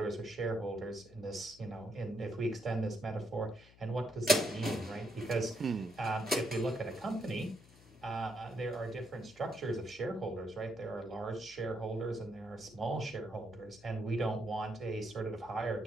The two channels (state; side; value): noise; left; hum, 23 dB below the sound